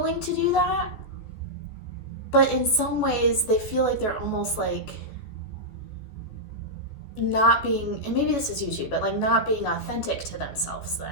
to do that. But in some ways they feel like they're almost like not being, and maybe this is you too, but like not being authentic to themselves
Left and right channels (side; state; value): right; late; 14 ms